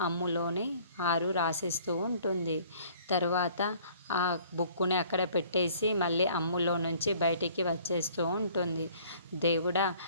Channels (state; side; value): inverted; both; correlation -0.55